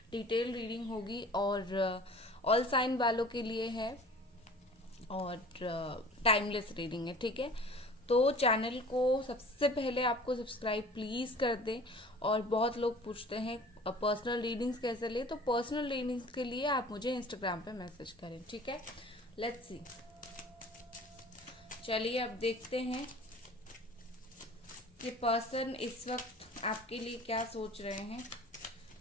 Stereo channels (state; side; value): normal; both; correlation 0.45